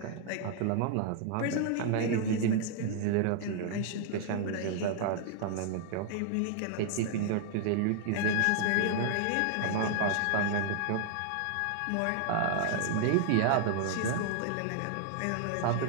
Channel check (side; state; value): both; different; correlation 0.00